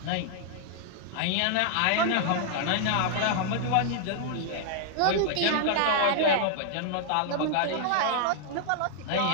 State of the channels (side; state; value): both; different; correlation -0.01